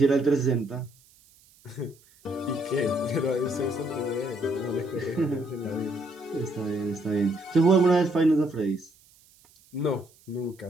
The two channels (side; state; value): right; noise; hiss, 29 dB below the sound